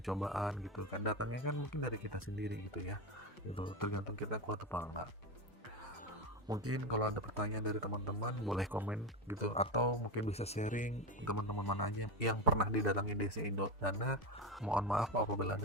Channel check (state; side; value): normal; both; correlation 0.16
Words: cobaan gitu kan, datangnya kan mungkin dari kita sendiri gitu ya, itu tergantung kita kuat apa enggak. Mungkin kalau ada pertanyaan dari teman-teman boleh komen gitu, atau mungkin bisa sharing teman-teman mana aja yang pernah didatangi DC Indonesia. Mohon maaf apabila